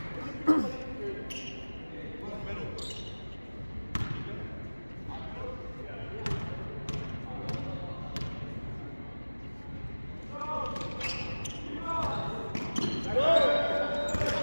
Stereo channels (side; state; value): both; inverted; correlation -1.00